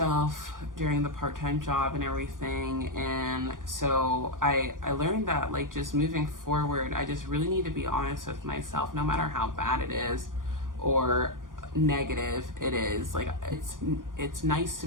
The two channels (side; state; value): left; late; 0.89 ms